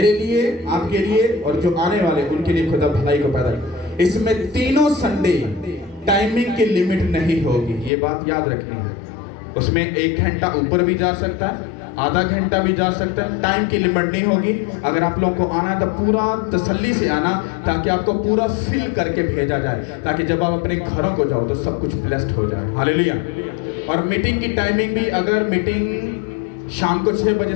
लिए, आपके लिए और जो आने वाले उनके लिए खुदा भलाई को पैदा करे। इसमें तीनों संडे टाइमिंग की लिमिट नहीं होगी, ये बात याद रखनी है। उसमें 1 घंटा ऊपर भी जा सकता है, आधा घंटा भी जा सकता है, टाइम की लिमिट नहीं होगी। अगर आप लोगों को आना है तो पूरा तसल्ली से आना, ताकि आपको पूरा फिल करके भेजा जाए, ताकि जब आप अपने घरों को जाओ तो सब कुछ ब्लेस्ड हो जाए। हालेलुया। और मीटिंग की टाइमिंग भी, अगर मीटिंग शाम को 6 बजे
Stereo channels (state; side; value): drops out; right; at 7.9 s